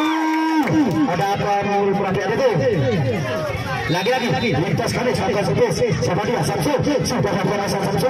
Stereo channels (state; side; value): identical; both; correlation 1.00